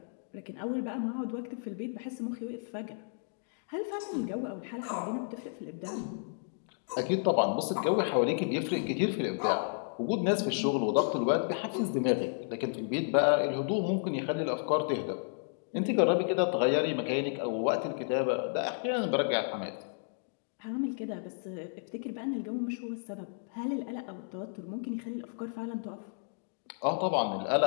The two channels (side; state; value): right; silent; digital silence